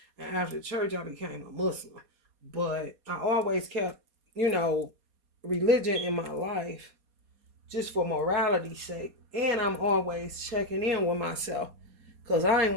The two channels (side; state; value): left; late; 4.2 ms